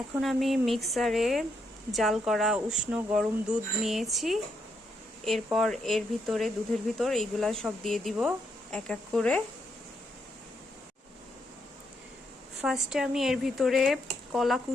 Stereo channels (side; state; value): both; normal; correlation 0.78